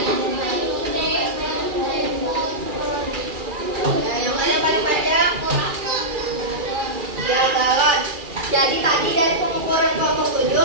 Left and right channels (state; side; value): late; left; 2.4 ms